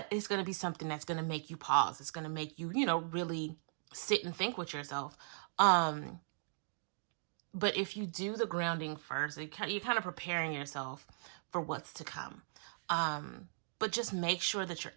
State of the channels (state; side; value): silent; left; digital silence